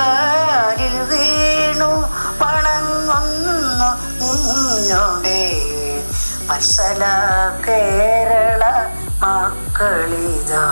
വീണു വണങ്ങുന്നു നിന്നോടെ വത്സല കേരള മക്കളിതാ.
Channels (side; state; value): both; inverted; correlation -1.00